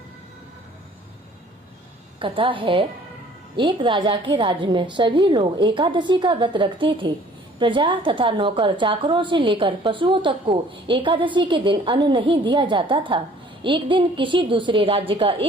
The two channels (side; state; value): both; normal; correlation 0.55